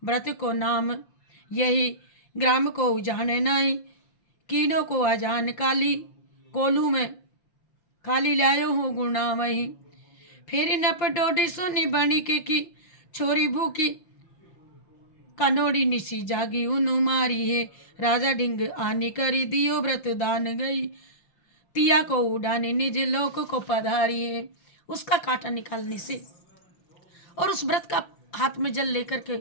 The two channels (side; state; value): right; late; 5.9 ms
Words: व्रत को नाम यही ग्राम को उजाने नहीं, कीनों को अजान काली, कोलू में खाली लायो हूँ गुणा वहीं, फिर नप डोडी सुनी बनी के की, छोरी भूखी कनोड़ी निसी जागी उनु मारी है, राजा ढिंग आनी करी दियो व्रत दान गई, तिया को उड़ाने निज लोक को पधारी है। उसका कांटा निकालने से और उस व्रत का हाथ में जल लेकर के